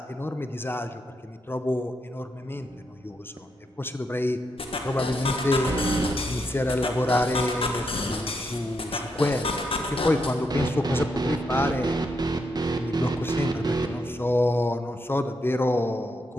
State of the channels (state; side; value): normal; both; correlation 0.80